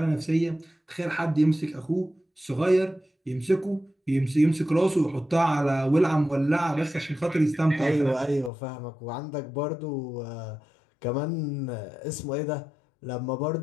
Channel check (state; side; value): drops out; right; at 8.5 s